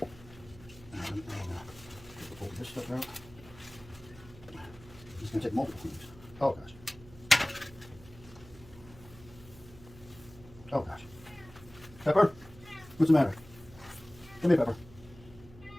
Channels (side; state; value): right; noise; hum, 20 dB below the sound